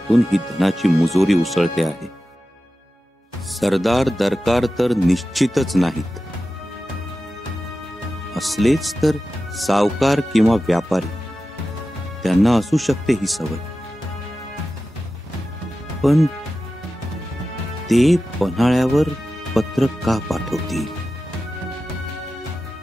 ही धनाची मुजोरी उसळते आहे. सरदार दरकार तर निश्चितच नाहीत. असलेच तर सावकार किंवा व्यापारी, त्यांना असू शकते ही सवय. पण ते पन्हाळ्यावर पत्र का पाठवतील?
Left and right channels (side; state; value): both; normal; correlation 0.93